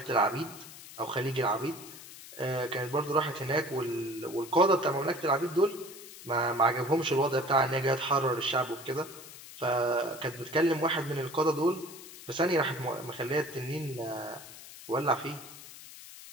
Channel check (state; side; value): noise; left; hiss, 16 dB below the sound